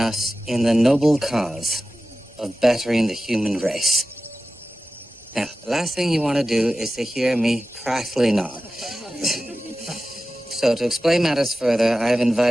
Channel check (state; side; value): normal; both; correlation 0.94